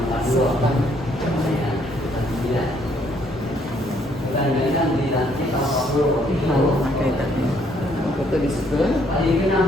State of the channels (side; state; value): both; normal; correlation 0.68